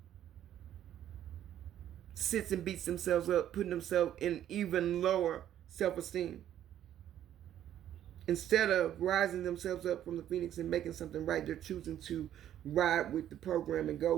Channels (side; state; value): left; quieter; 11.2 dB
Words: sits and beats themselves up, putting themselves in even lower self-esteem. Instead of rising themselves up from the phoenix and making something right, they're choosing to ride with the program and go